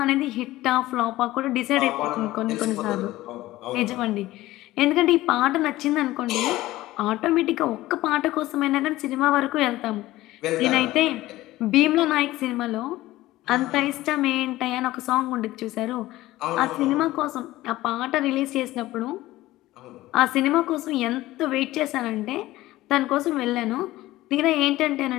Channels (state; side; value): quieter; right; 16.9 dB